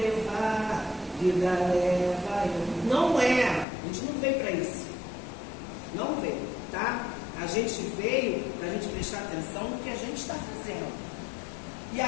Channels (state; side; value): drops out; right; at 3.7 s